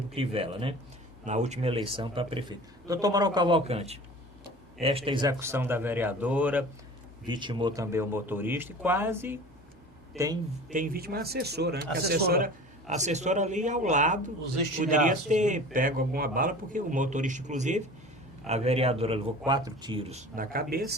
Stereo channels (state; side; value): normal; both; correlation 0.40